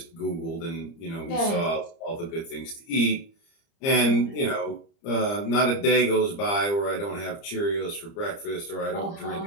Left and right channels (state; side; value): late; right; 30 ms